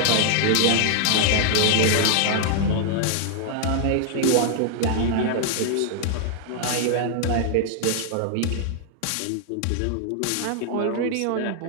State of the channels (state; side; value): different; both; correlation -0.01